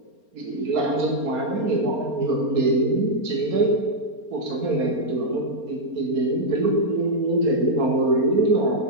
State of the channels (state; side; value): late; left; 4.3 ms